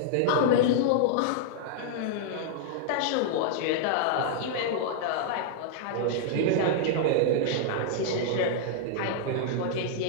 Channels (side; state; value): both; different; correlation -0.01